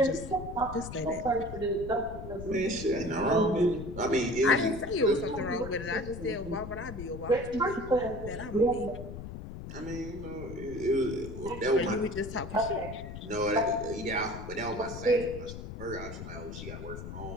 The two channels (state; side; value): noise; left; rumble, 9 dB below the sound